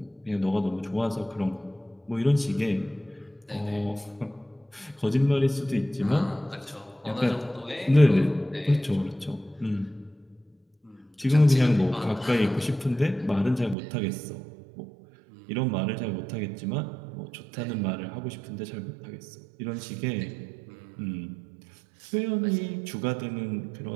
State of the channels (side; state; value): left; drops out; at 13.8 s